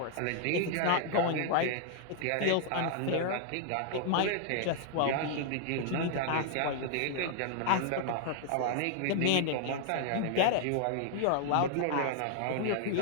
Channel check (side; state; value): both; different; correlation 0.00